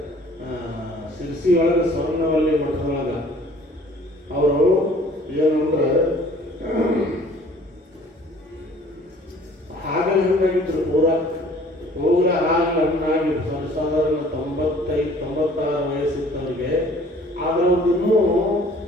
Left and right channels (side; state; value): both; normal; correlation 0.53